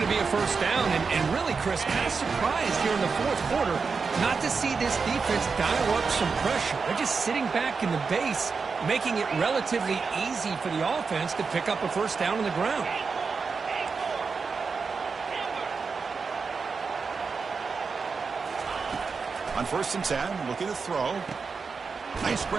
be a first down. And really, Chris, kind of surprised here in the fourth quarter not to see this defense dial up some pressure. They're just sitting back in the base, making it relatively easy for the offense to pick up a first down on the ground. On 1st and 10, looking to throw. Nice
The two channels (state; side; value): quieter; left; 5.0 dB